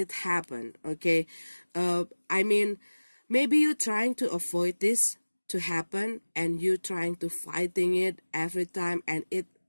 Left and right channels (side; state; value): both; inverted; correlation -1.00